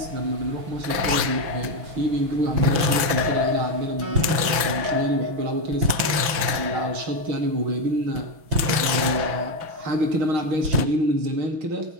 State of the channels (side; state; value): left; late; 6.3 ms